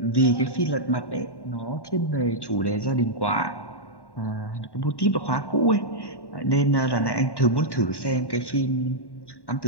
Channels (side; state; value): right; late; 1.1 ms